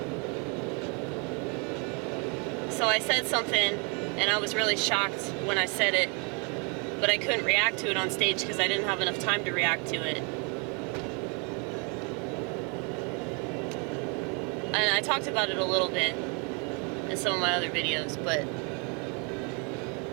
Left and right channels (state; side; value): quieter; left; 34.5 dB